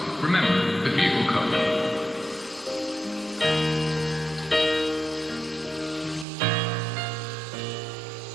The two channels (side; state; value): left; drops out; at 6.2 s